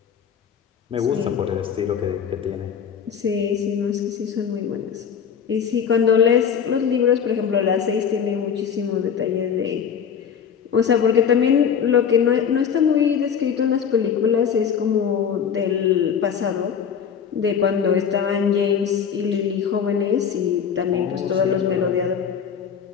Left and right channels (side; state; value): right; quieter; 7.5 dB